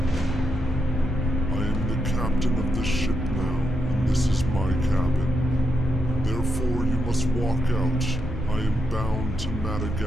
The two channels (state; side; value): normal; both; correlation 0.83